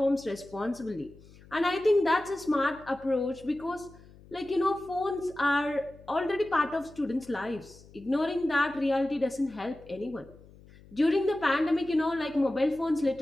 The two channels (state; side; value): noise; left; hum, 23 dB below the sound